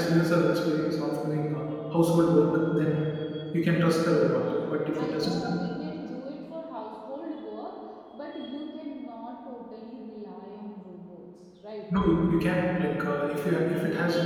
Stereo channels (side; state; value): both; identical; correlation 1.00